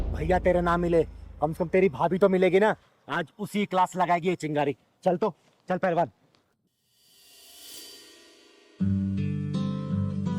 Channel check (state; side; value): identical; both; correlation 1.00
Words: भैया तेरे ना मिले, कम से कम तेरी भाभी तो मिलेगी ना। आज उसी क्लास लगाएगी ये चिंगारी। चल तो, चल पहलवान।